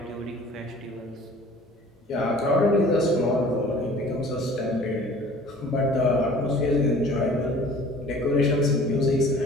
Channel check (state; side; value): normal; both; correlation 0.48